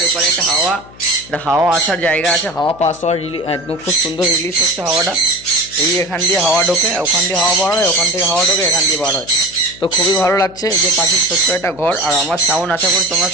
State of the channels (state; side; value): noise; left; hum, 22 dB below the sound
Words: এপারে একটা হাওয়া আসার জায়গা আছে, হাওয়া পাস হওয়ার একদম খুব সুন্দর রিলিজ হচ্ছে হাওয়াটা। এই এখান দিয়ে হাওয়া ঢোকে, ওখান দিয়ে হাওয়া বার হয়, ওখান থেকে হাওয়া ঢোকে, এখান দিয়ে বার হয়। তো খুবই ভালো লাগছে যে পাখির ছোট্ট একটা ঘর। আর আমার সাউন্ড আশা করি তোমরা